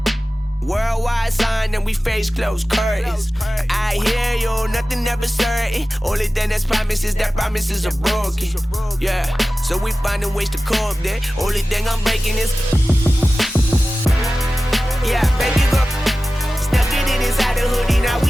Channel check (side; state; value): both; normal; correlation 0.96